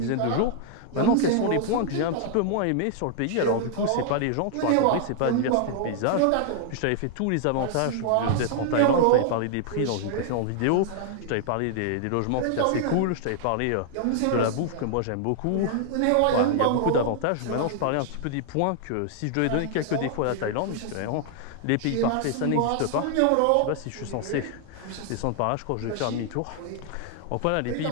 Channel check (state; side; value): different; both; correlation 0.00